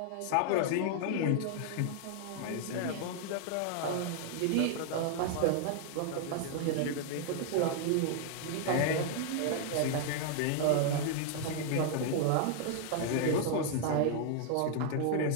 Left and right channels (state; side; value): different; both; correlation 0.00